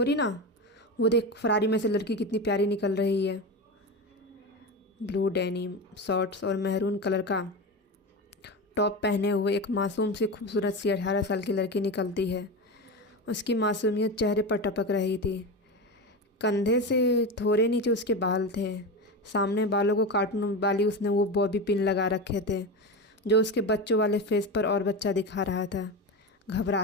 ना। वो देख फरारी में से लड़की कितनी प्यारी निकल रही है। ब्लू डेनिम शॉर्ट्स और मेहरून कलर का टॉप पहने हुए एक मासूम सी खूबसूरत सी 18 साल की लड़की निकलती है। उसकी मासूमियत चेहरे पर टपक रही थी। कंधे से थोड़े नीचे उसके बाल थे। सामने बालों को काटने वाली उसने वो बॉबी पिन लगा रखे थे, जो उसके बच्चों वाले फेस पर और बच्चा दिखा रहा था।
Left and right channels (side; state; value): both; normal; correlation 0.21